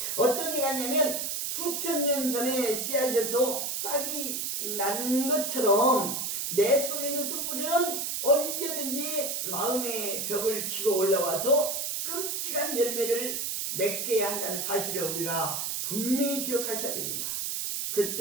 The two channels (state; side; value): noise; right; hiss, 2 dB below the sound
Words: 어떤 얘기가 있냐면 수천 년 전에 씨앗에서 싹이 난 것처럼 내 속에 있는 쓴뿌리는 언제든지 마음의 벽을 치고 올라와서 끔찍한 열매를 맺게 한다는 사실을 우리가 분명히 기억하셔야 됩니다.